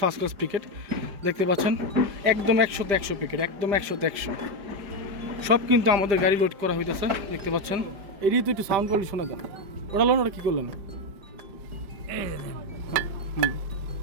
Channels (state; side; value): late; left; 5.0 ms